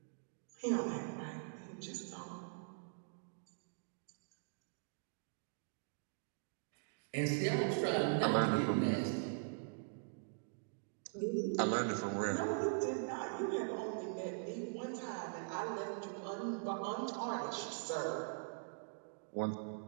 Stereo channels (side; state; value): left; silent; digital silence